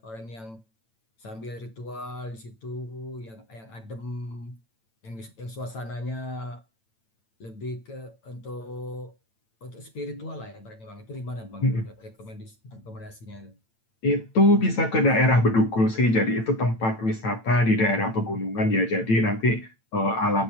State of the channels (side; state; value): right; late; 8.9 ms